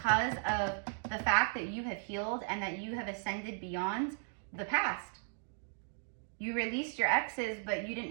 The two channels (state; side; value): silent; left; 54 dB below the other